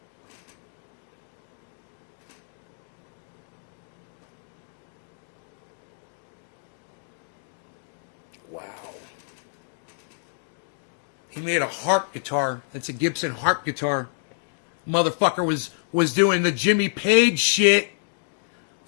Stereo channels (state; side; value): silent; right; digital silence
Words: He made a harp guitar. That's a Gibson harp guitar. Motherfucker was doing the Jimmy Page shit.